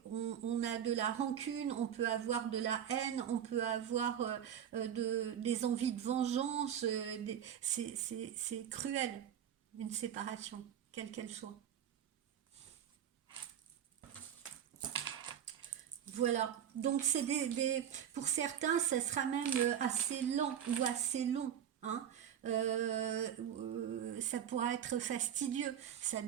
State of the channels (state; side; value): quieter; left; 9.4 dB